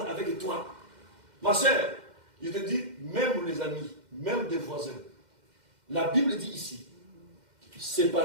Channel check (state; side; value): late; left; 2.1 ms